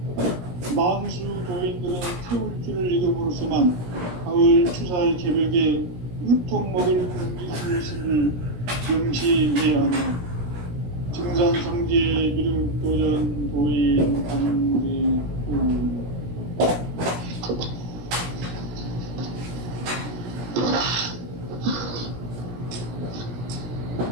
만수 도인들은 태울 줄을 읽음으로써만 가을 추살 개벽에 으통 먹을 기술을 명시해야 한다. 증산상제 미륵도전 도인 강제구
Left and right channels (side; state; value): left; late; 17 ms